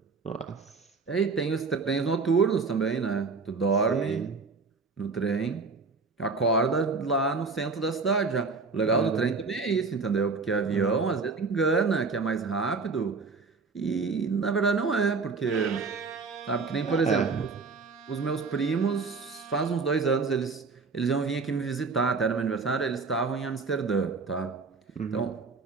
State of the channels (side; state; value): left; quieter; 4.4 dB